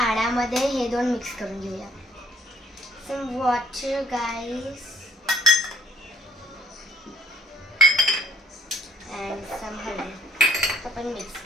हे दोन मिक्स करून घेऊया. Some water, guys. And some हळद. आपण मिक्स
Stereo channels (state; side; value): normal; both; correlation 0.60